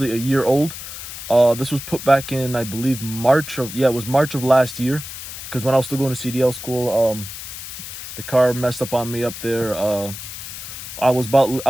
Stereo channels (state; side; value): noise; left; hiss, 10 dB below the sound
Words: a year old. This was put back in, I believe, March of last year, because when I was still going to CDL school, the car messed up on me up there. I was